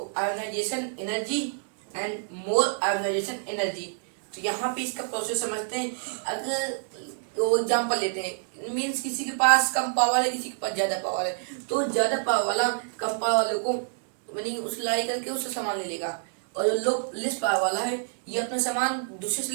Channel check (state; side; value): silent; left; digital silence